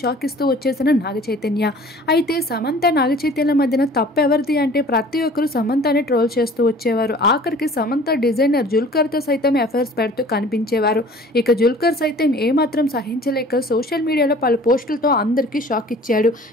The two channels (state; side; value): normal; both; correlation 0.48